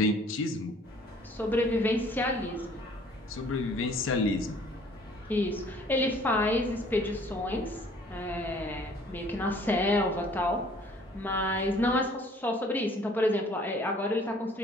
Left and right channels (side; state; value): both; normal; correlation 0.56